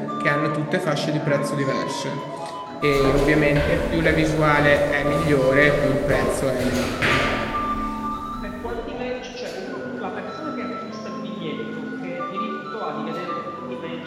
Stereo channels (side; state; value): both; identical; correlation 1.00